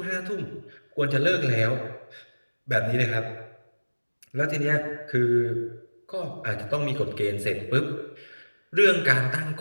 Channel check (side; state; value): both; inverted; correlation -1.00